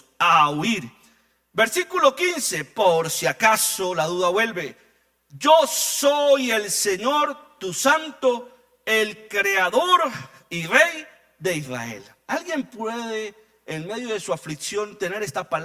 a huir. Versículo 15, por si acaso la duda vuelve. Yo soy el Señor, tu santo, el creador y rey de Israel. ¿Alguien puede en medio de su aflicción tener esta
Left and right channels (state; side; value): identical; both; correlation 1.00